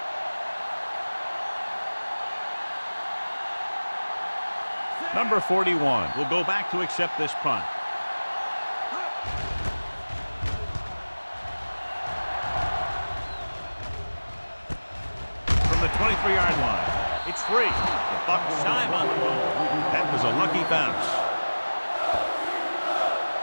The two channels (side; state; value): both; inverted; correlation -1.00